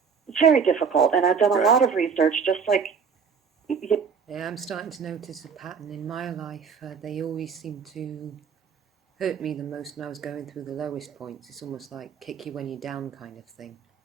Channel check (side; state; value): left; quieter; 6.2 dB